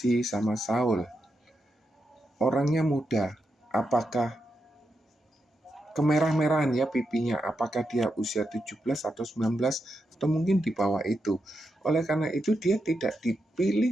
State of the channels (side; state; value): both; normal; correlation 0.85